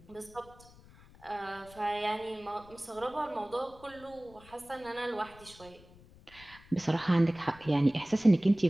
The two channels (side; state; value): left; noise; rumble, 23 dB below the sound